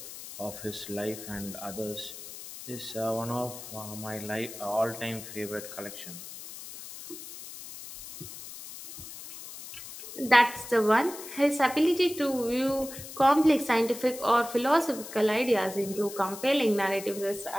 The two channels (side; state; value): left; noise; hiss, 12 dB below the sound